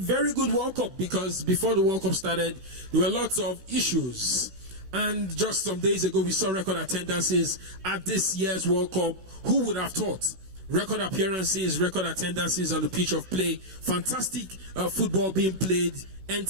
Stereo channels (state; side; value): late; left; 16 ms